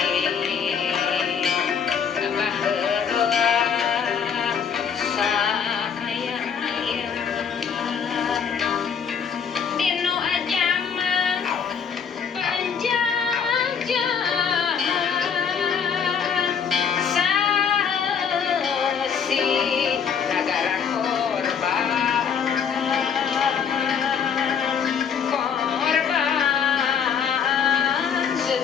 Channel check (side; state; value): right; quieter; 7.0 dB